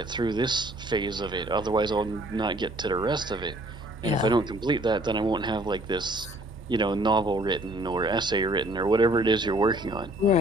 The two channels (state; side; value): normal; both; correlation 0.58